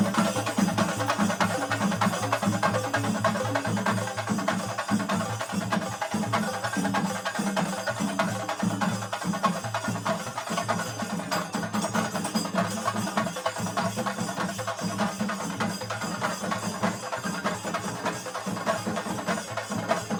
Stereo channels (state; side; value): identical; both; correlation 1.00